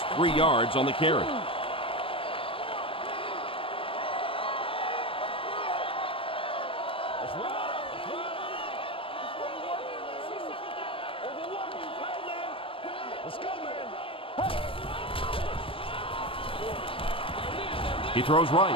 3 yards on the carry. He throws right.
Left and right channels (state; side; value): late; right; 0.26 ms